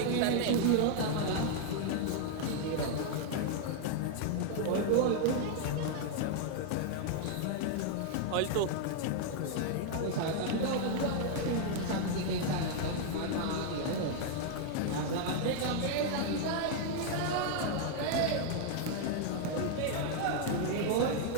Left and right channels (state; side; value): different; both; correlation 0.00